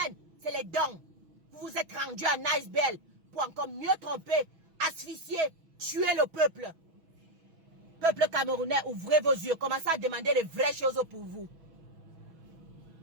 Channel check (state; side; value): late; left; 6.1 ms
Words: C'est les dons. Vous vous êtes rendu à Nicebell pour encore mieux tromper, asphyxier, tuer le peuple. Peuple camerounais, ouvrez vos yeux. Commencez à demander les vraies choses pour vous.